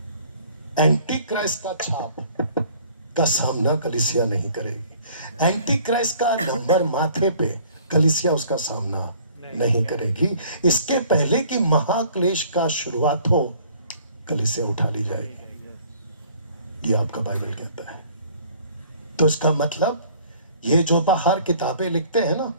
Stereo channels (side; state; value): both; inverted; correlation -0.54